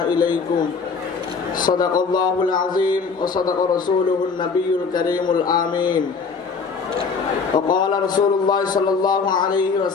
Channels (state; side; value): quieter; right; 5.1 dB